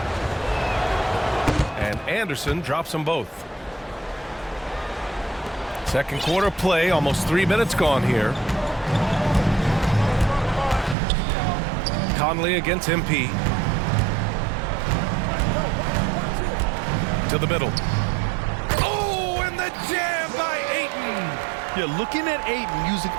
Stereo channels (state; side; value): drops out; left; at 11.0 s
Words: And Anderson drops them both. Second quarter play, almost 3 minutes gone here. Conley against MP. To the middle. Oh, and the jam by Ayton. You're looking at Ayton using